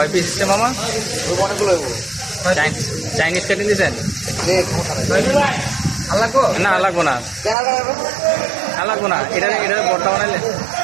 পিস হচ্ছে মামা? চাইনিজ কেটে দিয়েছেন? না লাগবো না, লাগবো না। এটা বড়টা বানাইলে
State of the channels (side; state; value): left; drops out; at 7.6 s